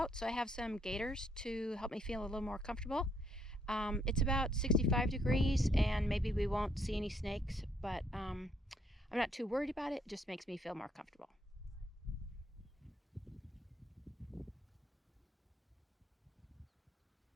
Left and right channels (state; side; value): normal; both; correlation 0.70